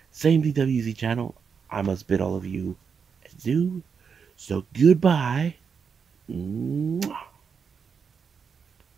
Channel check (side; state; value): left; quieter; 6.2 dB